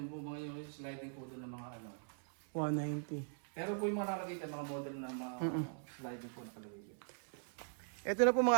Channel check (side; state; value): left; silent; 50 dB below the other